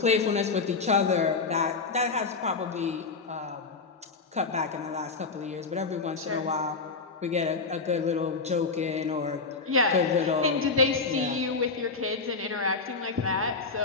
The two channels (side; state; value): right; quieter; 4.4 dB